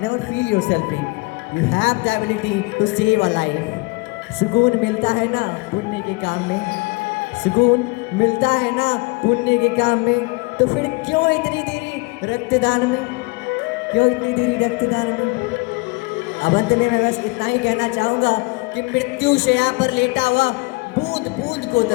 never feel yourself weak, you have the ability to save a life. सुकून मिलता है ना पुण्य के काम में, सुकून मिलता है ना पुण्य के काम में, तो फिर क्यों इतनी देरी रक्तदान में, क्यों इतनी देरी रक्तदान में। अब अंत में मैं बस इतना ही कहना चाहूँगा कि मृत्यु शैया पर लेटा हुआ बूंद बूंद को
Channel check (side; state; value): right; quieter; 27.4 dB